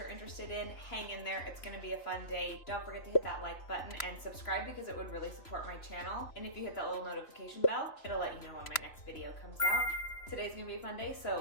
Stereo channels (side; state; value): right; late; 3.0 ms